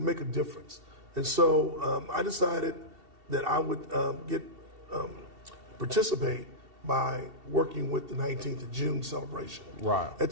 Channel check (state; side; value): late; left; 2.7 ms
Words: a difference. And so I decided that I would participate by working with the 19th of June celebration. Right. At